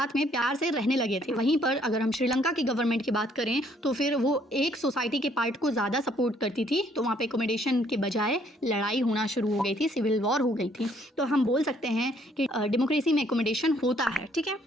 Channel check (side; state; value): both; normal; correlation 0.65